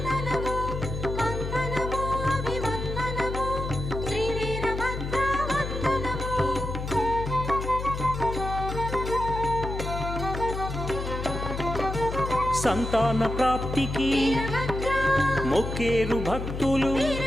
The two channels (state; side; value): noise; left; hum, 5 dB below the sound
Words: సంతాన ప్రాప్తికి మొక్కేరు భక్తులు